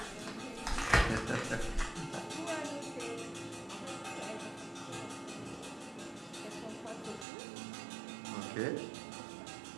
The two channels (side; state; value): left; drops out; at 7.2 s